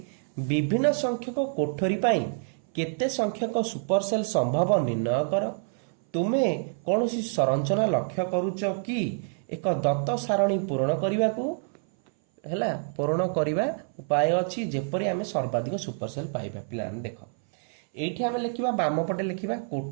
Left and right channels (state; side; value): silent; left; 59 dB below the other